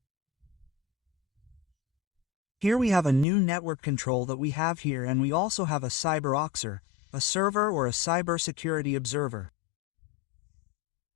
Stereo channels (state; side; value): drops out; right; at 3.2 s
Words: Here we have a new network control that we have here, and we also have a CyberOxer, a server or a cybersecurity observer.